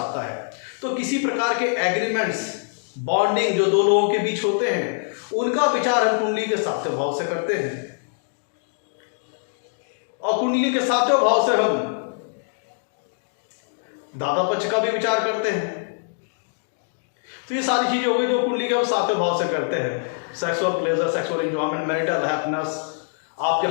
है। तो किसी प्रकार के एग्रीमेंट्स, बॉन्डिंग जो दो लोगों के बीच होते हैं, उनका विचार हम कुंडली के सातवें भाव से करते हैं। और कुंडली के सातवें भाव से हम दादा पक्ष का भी विचार करते हैं। तो ये सारी चीजें हो गई जो कुंडली के हम सातवें भाव से करते हैं। Sexual pleasure, sexual enjoyment, marital happiness, आपके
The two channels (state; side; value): silent; right; digital silence